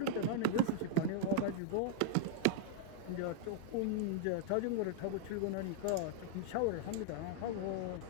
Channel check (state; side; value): different; both; correlation -0.01